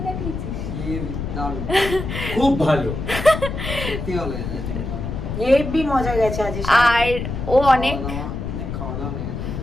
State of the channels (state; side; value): noise; left; rumble, 5 dB below the sound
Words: কাটিয়েছিস ইয়ে, দারুণ। খুব ভালো সত্যি ভালো হয়েছে। হেভি মজা গেছে আজ আর ও অনেক অনেক খাওয়া দাওয়া হয়ে গেছে।